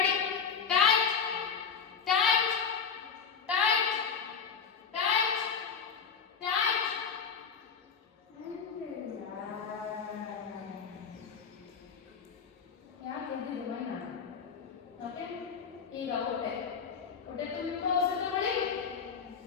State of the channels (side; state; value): right; quieter; 6.3 dB